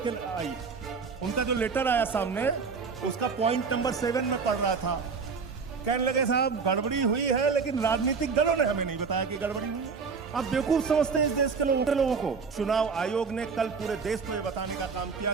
के आई। उनका जो लेटर आया सामने, उसका पॉइंट नंबर 7 में पढ़ रहा था। कहने लगे साहब गड़बड़ी हुई है, लेकिन राजनीतिक दलों ने हमें नहीं बताया कि गड़बड़ी हुई है। आप बेवकूफ समझते हैं इस देश के लोगों को। चुनाव आयोग ने कल पूरे देश को यह बताने का काम किया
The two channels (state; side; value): quieter; left; 5.2 dB